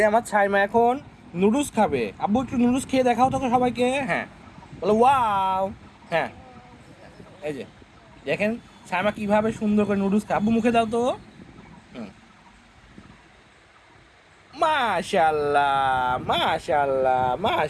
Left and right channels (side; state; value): both; identical; correlation 1.00